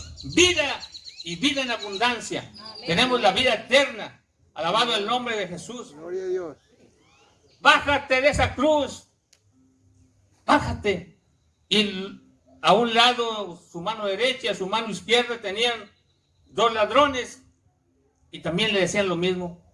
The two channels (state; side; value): identical; both; correlation 1.00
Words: vida y vida en abundancia. Amén. Tenemos la vida eterna. Alabado el nombre de Jesús. Gloria a Dios. Bájate de esa cruz. Bájate. Y a un lado, su mano derecha y a su mano izquierda tenían dos ladrones. Y también le decían lo mismo.